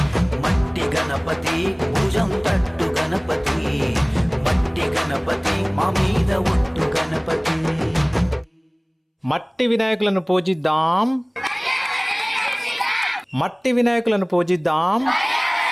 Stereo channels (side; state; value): both; identical; correlation 1.00